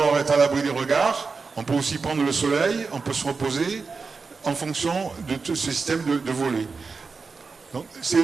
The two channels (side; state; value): left; quieter; 4.6 dB